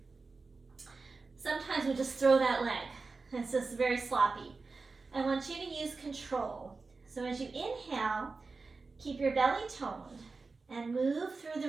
Sometimes we just throw that leg. It's just very sloppy. I want you to use control. So as you inhale, keep your belly toned and move through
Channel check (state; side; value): quieter; left; 4.1 dB